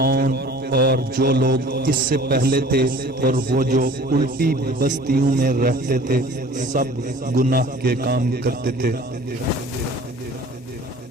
اور جو لوگ اس سے پہلے تھے اور وہ جو الٹی بستیوں میں رہتے تھے، سب گناہ کے کام کرتے تھے۔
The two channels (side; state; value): both; normal; correlation 0.47